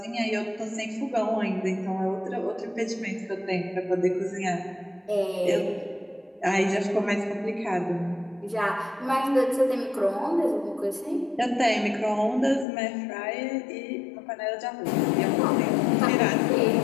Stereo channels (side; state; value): right; drops out; at 12.7 s